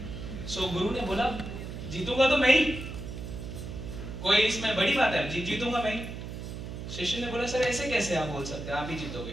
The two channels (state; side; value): noise; right; hum, 8 dB below the sound